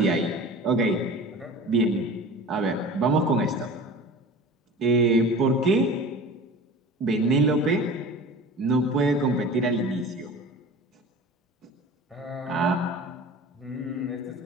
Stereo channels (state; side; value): normal; both; correlation 0.38